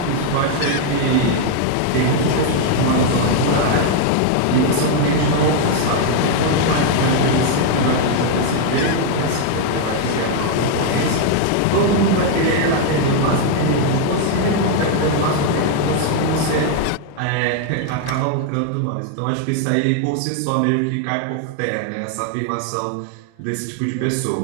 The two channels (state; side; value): different; both; correlation 0.00